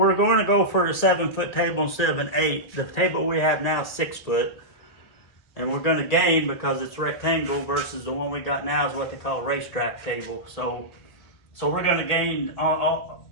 to go for a 7 foot table instead of an 8. The table we have now is 6 foot, and we're going to gain because it's rectangle versus the one we got now is what they call a racetrack table. So we're going to gain on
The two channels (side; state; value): right; late; 1.9 ms